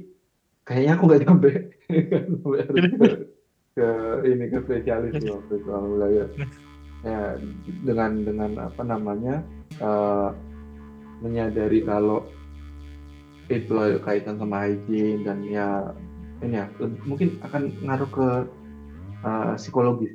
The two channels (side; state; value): both; identical; correlation 1.00